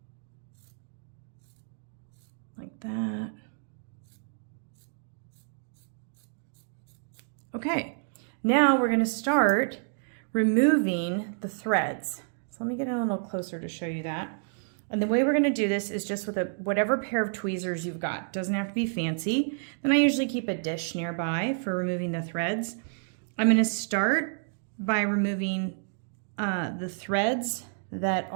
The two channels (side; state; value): left; silent; digital silence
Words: like that. Okay, now we're gonna start removing the threads. So let me get a little closer to show you that. And the way we're gonna do this is just with whatever pair of tweezers you've got. Doesn't have to be fancy. Then I usually keep a dish nearby for removing the threads. I'm gonna start by removing the threads that